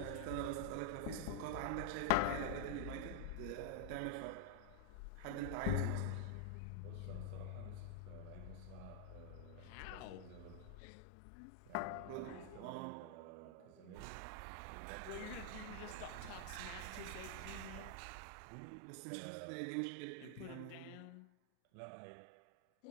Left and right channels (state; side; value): different; both; correlation 0.00